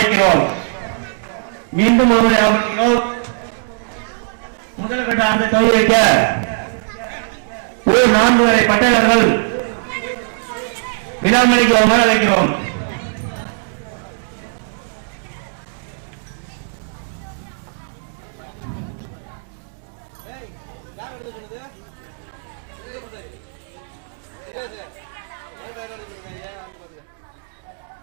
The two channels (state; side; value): silent; left; digital silence